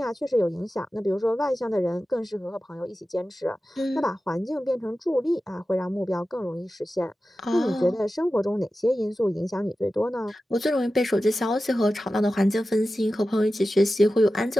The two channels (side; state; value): both; normal; correlation 0.94